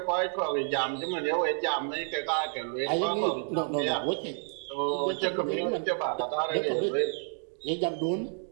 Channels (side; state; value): left; silent; 58 dB below the other